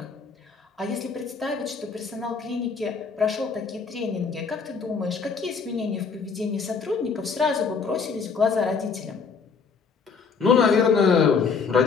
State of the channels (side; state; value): right; quieter; 5.4 dB